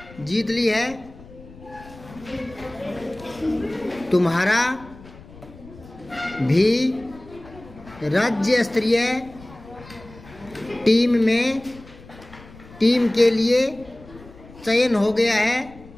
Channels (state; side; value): noise; left; rumble, 20 dB below the sound